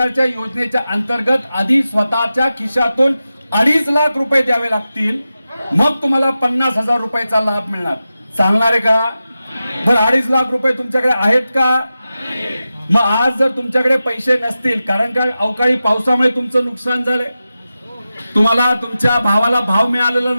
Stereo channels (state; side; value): inverted; both; correlation -0.93